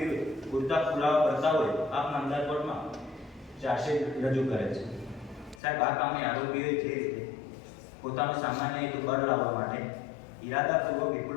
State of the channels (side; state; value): right; drops out; at 5.6 s